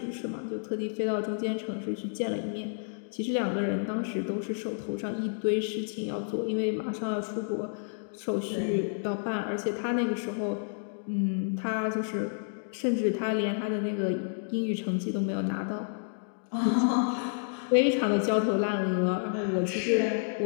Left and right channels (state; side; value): silent; right; digital silence